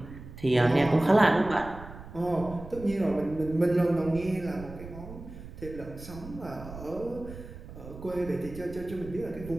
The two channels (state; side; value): noise; right; rumble, 14 dB below the sound